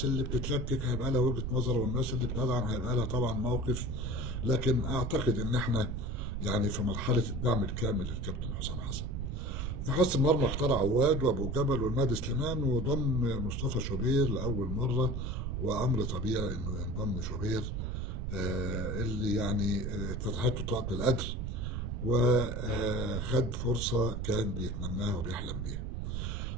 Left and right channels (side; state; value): right; noise; rumble, 3 dB below the sound